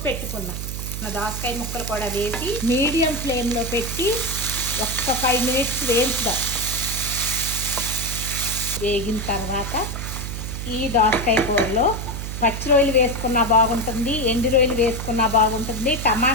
పెట్టుకున్నా దోసకాయ ముక్కలు కూడా వేసి మీడియం ఫ్లేమ్లో పెట్టి ఒక్క 5 మినిట్స్ వేయించుదాం. వేగిన తర్వాత ఈ దోసకాయ కూరలో పచ్చి రొయ్యలు వేసుకున్నా బాగుంటుంది, ఎండు రొయ్యలు వేసుకున్నా బాగుంటుంది,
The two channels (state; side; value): noise; right; hum, 5 dB below the sound